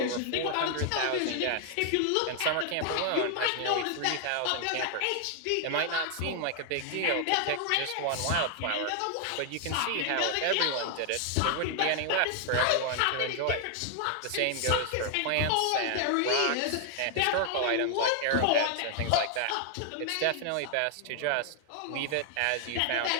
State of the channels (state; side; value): different; both; correlation 0.00